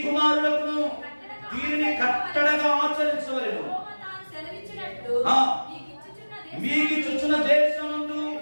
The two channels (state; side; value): inverted; both; correlation -1.00